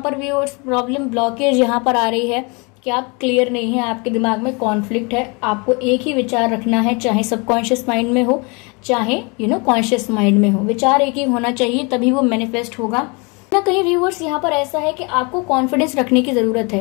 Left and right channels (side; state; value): right; quieter; 30.3 dB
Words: पर भी और प्रॉब्लम ब्लॉकेज यहाँ पर आ रही है कि आप क्लियर नहीं है, आपके दिमाग में कॉन्फ्लिक्ट है। आपको एक ही विचार रखना है, चाहे सबकॉन्शियस माइंड में हो चाहे कॉन्शियस माइंड में हो, विचार एक ही होना चाहिए, तभी वो मैनिफेस्ट होगा ना। कहीं व्यूअर्स यहाँ पर ऐसा है कि आपको कॉन्फिडेंस रखने की जरूरत